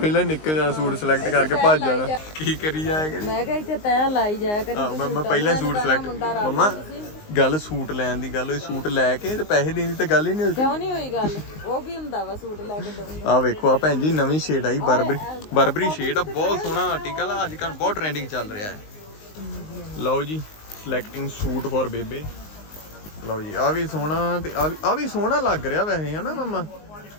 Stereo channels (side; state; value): right; late; 19 ms